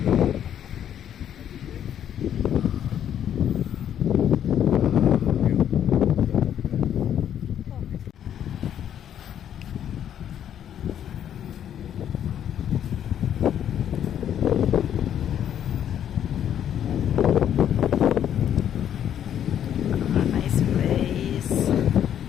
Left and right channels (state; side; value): quieter; right; 9.8 dB